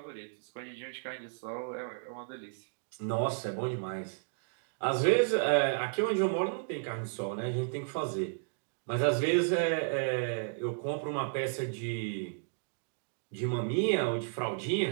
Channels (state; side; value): silent; left; digital silence